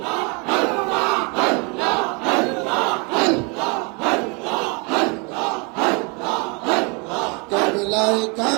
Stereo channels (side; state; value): left; quieter; 31.7 dB